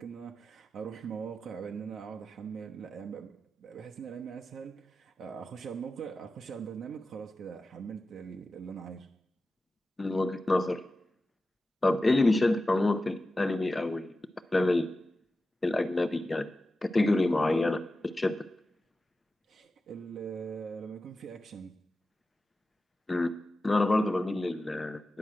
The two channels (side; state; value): both; normal; correlation 0.93